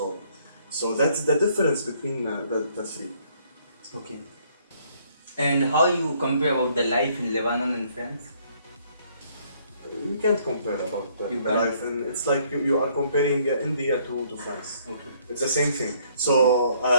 So that's the difference between the three. Okay. And how you compare about the life in Lebanon and France? You can't compare about You the can't. life, and it's like you are comparing India to France. Okay. It's the same thing. So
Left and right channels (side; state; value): both; inverted; correlation -0.65